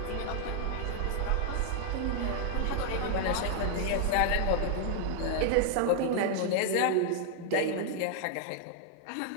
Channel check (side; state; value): both; different; correlation 0.00